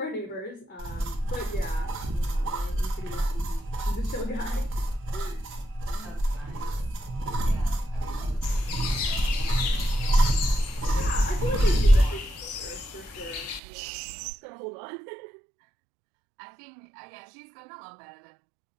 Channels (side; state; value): left; drops out; at 13.6 s